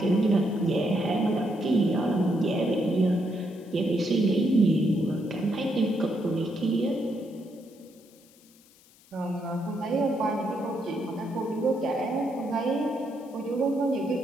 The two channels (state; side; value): noise; left; hiss, 28 dB below the sound